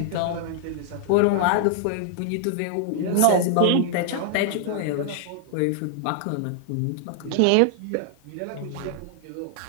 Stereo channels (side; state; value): both; different; correlation 0.00